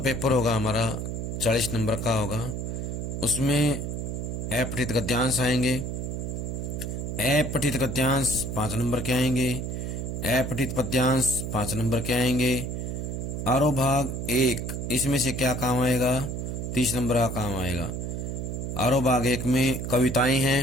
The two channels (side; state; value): right; noise; hum, 4 dB below the sound